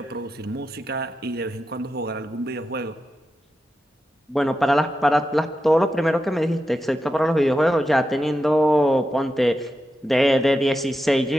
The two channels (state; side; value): normal; both; correlation 0.89